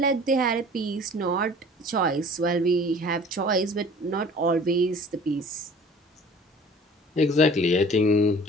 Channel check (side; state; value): both; normal; correlation 0.47